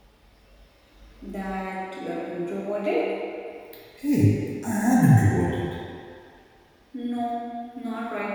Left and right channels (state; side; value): identical; both; correlation 1.00